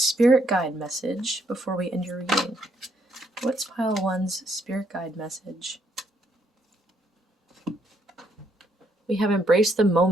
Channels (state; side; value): normal; both; correlation 0.72